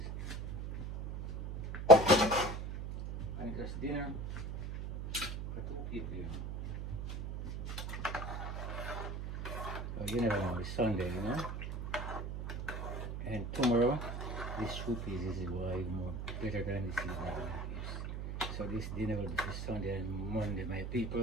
just dinner for 2 people, you know. So you never know, it's Sunday, you know. And tomorrow, this soup is why more better than this evening, my peeps. So this dinner will be for Sunday and Monday, my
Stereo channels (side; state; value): right; noise; hum, 5 dB below the sound